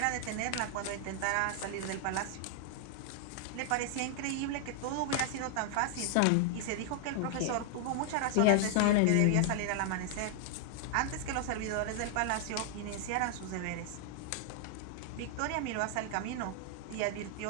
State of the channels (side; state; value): both; different; correlation 0.00